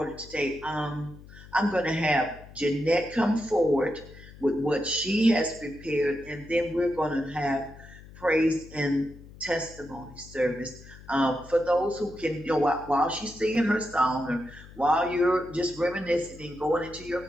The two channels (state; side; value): noise; left; hum, 19 dB below the sound